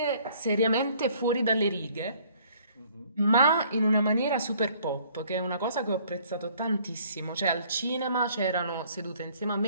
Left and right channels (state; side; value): inverted; both; correlation -0.59